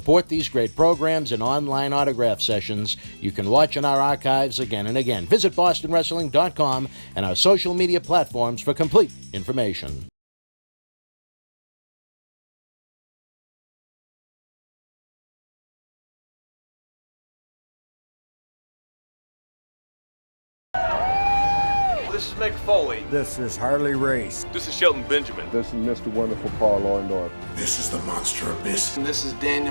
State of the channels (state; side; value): inverted; both; correlation -1.00